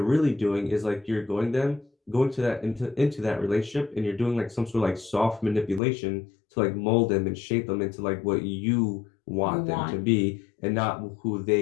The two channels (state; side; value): drops out; right; at 5.8 s